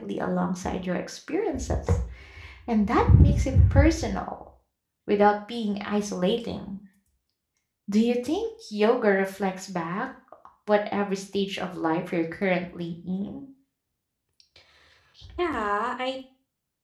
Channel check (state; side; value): identical; both; correlation 1.00